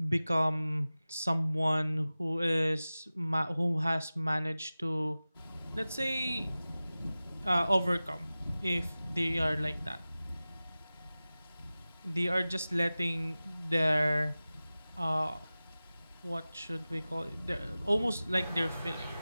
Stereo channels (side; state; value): both; inverted; correlation -0.97